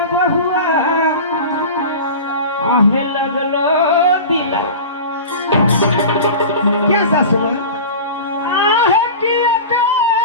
बहुआ, आहे लगलो दिला। क्या सासू माँ? आहे की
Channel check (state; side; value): inverted; both; correlation -0.33